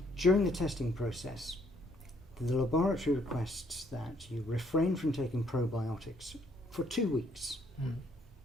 During the testing process, the laboratory requests that you refrain from taking probiotics for 2 weeks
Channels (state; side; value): normal; both; correlation 0.67